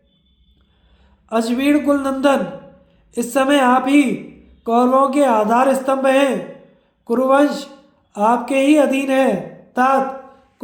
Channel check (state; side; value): identical; both; correlation 1.00